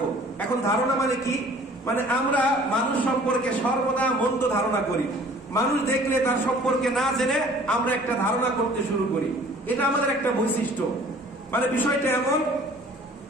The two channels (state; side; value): normal; both; correlation 0.51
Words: এখন ধারণা মানে কি? মানে আমরা মানুষ সম্পর্কে সর্বদা মন্দ ধারণা করি। মানুষ দেখলে তার সম্পর্কে না জেনে আমরা একটা ধারণা করতে শুরু করি, এটা আমাদের একটা বৈশিষ্ট্য। মানে বিষয়টা এমন,